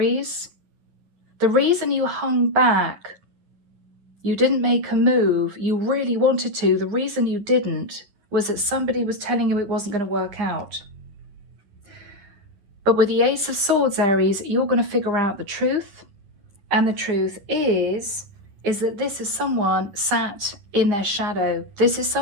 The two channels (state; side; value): late; left; 9.7 ms